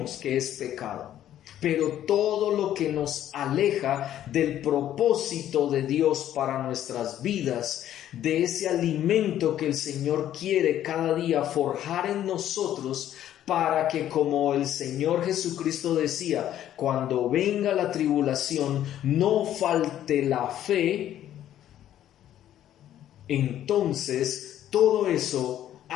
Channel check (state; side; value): quieter; right; 11.7 dB